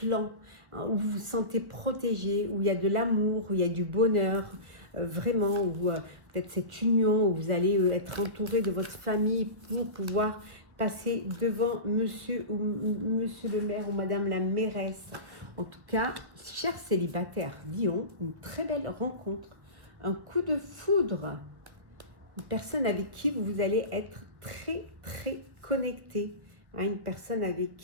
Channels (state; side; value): late; left; 1.3 ms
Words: hein, où vous vous sentez protégé, où il y a de l'amour, où il y a du bonheur, vraiment, où peut-être cette union, où vous allez être entouré de votre famille pour pouvoir passer devant monsieur le maire ou madame la mairesse. En tout cas, chers célibataires, Lion, une très belle rencontre, un coup de foudre, une personne avec qui vous allez être très, très connecté, hein, une personne avec